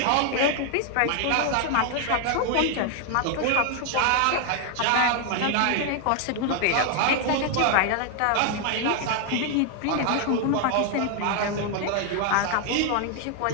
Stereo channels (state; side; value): different; both; correlation 0.00